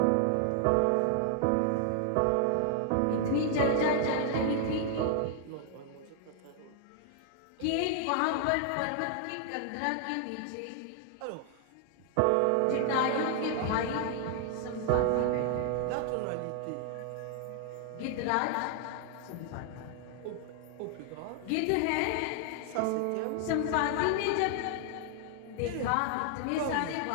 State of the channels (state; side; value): different; both; correlation 0.00